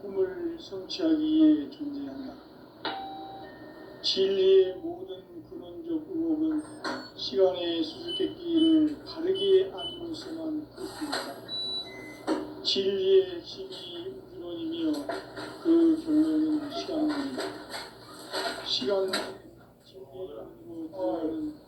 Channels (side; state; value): both; identical; correlation 1.00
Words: 꿈을 성취하기 위해 존재한다. 진리의 모든 근원적 의혹은 시간의 수수께끼를 바르게 알면서만 풀 수 있다. 진리의 핵심이 우주론이며 그 결론은 시간론이다. 시간은 진리의 이름으로